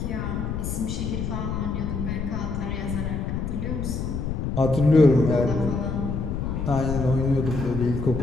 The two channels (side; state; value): left; noise; rumble, 2 dB below the sound